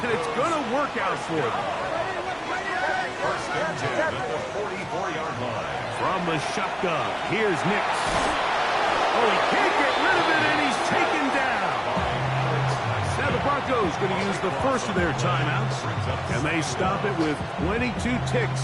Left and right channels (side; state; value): both; identical; correlation 1.00